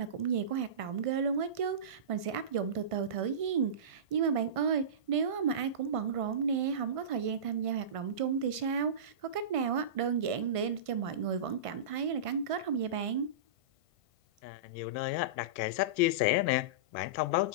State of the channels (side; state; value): left; late; 1.5 ms